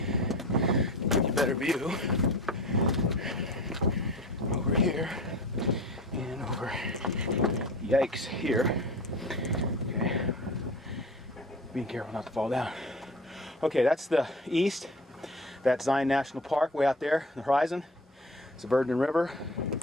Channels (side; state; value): both; normal; correlation 0.36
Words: you a better view. Over here and over. Yikes, here. Okay, being careful not to fall down. Okay, that's the east. That's Zion National Park way out there, the horizon. It's the Verdon River.